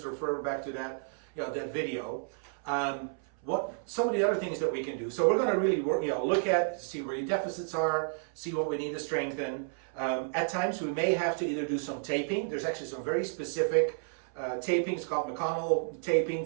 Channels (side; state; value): left; silent; 57 dB below the other